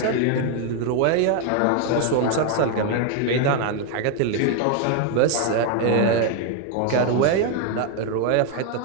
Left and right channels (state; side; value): different; both; correlation 0.01